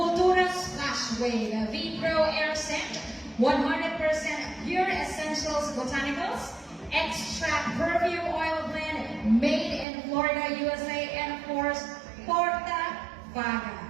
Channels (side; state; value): left; drops out; at 9.9 s